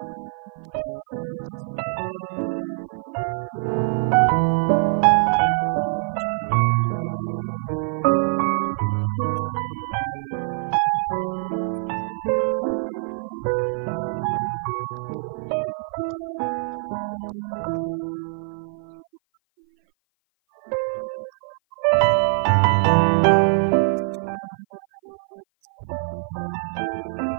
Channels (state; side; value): silent; left; 57 dB below the other